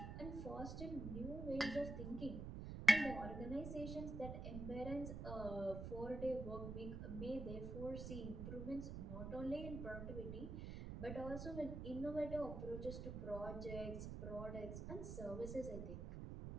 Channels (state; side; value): noise; right; rumble, 5 dB below the sound